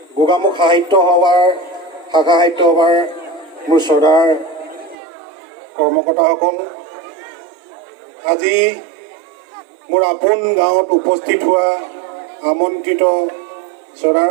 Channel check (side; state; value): left; drops out; at 5.0 s